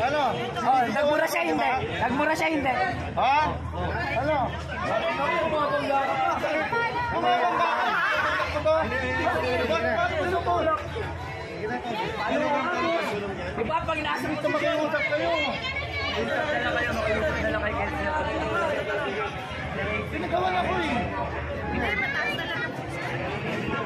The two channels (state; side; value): identical; both; correlation 1.00